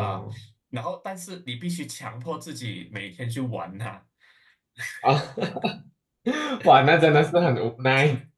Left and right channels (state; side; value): identical; both; correlation 1.00